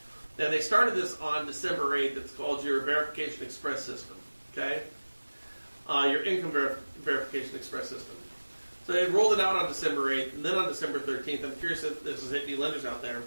And they started this on December 8th. It's called your Verification Express System, okay? Your Income Verification Express System. So they rolled it out on December 8th, and then on December 13th, I'm curious if this is hitting any lenders out there.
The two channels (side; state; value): both; inverted; correlation -1.00